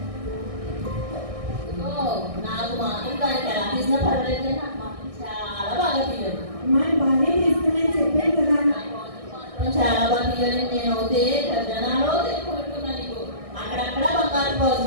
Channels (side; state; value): left; late; 1.6 ms